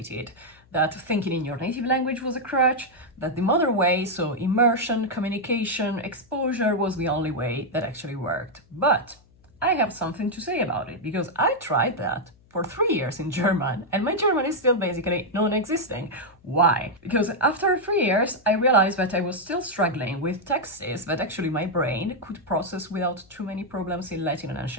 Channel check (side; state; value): left; noise; hum, 30 dB below the sound